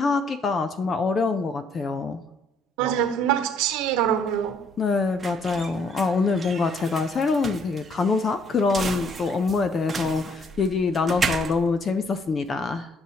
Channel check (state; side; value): normal; both; correlation 0.65